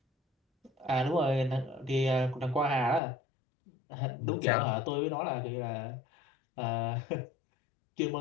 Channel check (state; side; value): drops out; right; at 3.0 s